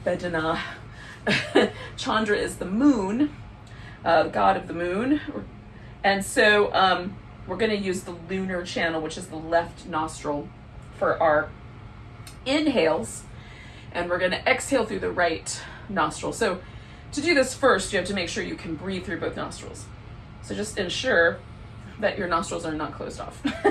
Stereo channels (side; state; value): both; identical; correlation 1.00